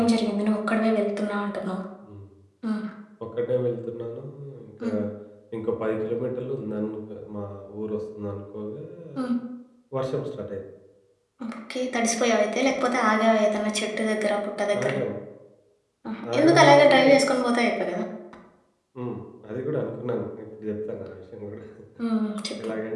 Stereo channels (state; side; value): identical; both; correlation 1.00